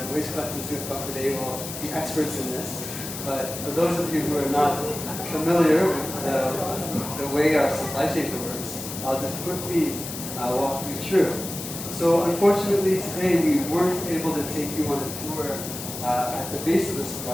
waste collectors who come today will be experts in this, but for those of you who are not familiar with the way our supply chain works, I'll just quickly walk you through. So unfortunately today we weren't able to take you on a tour at the base of the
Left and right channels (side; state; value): left; noise; hiss, 8 dB below the sound